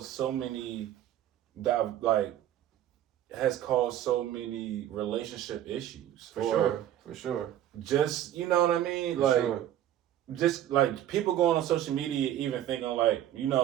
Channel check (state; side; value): quieter; left; 11.8 dB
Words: so many relationship issues. For sure. Just what I mean? Just like people going on social media, even thinking like,